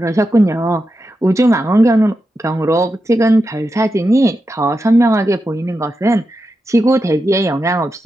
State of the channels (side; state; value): both; normal; correlation 0.88